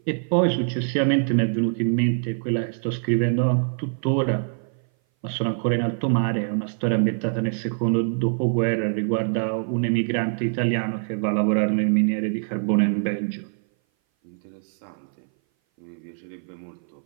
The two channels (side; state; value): left; silent; 58 dB below the other